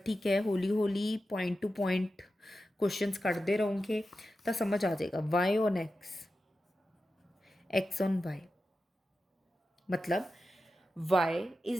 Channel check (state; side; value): normal; both; correlation 0.91